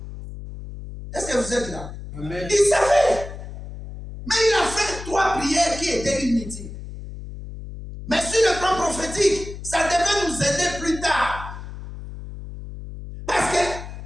Est-ce que vous êtes là? Amen. Il savait. Mais il a fait 3 prières qui étaient inutiles. Mais sur le plan prophétique, ça devait nous aider plus tard. Parce que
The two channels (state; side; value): noise; left; hum, 11 dB below the sound